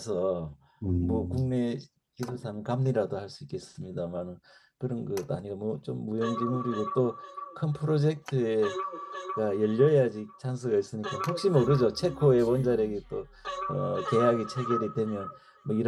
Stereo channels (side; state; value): both; identical; correlation 1.00